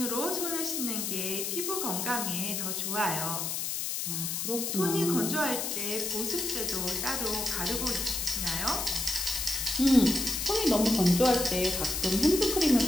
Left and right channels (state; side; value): noise; left; hiss, 2 dB below the sound